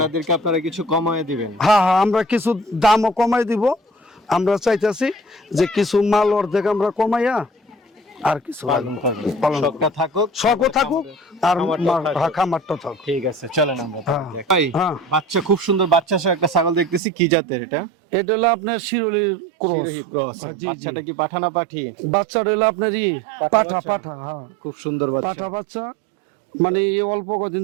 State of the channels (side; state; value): left; drops out; at 17.0 s